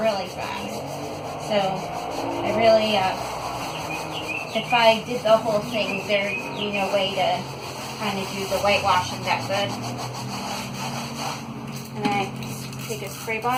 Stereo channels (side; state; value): both; identical; correlation 1.00